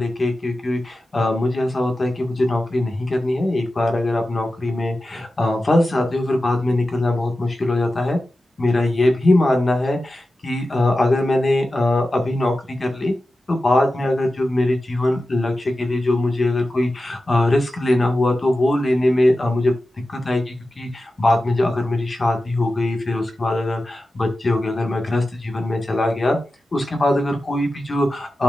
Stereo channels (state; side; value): normal; both; correlation 0.93